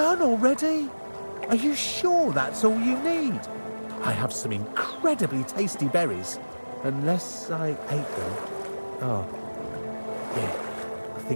already? Are you sure that's all you need? I have some incredibly tasty berries. Unless I ate them. Oh, yeah, I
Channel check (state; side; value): inverted; both; correlation -1.00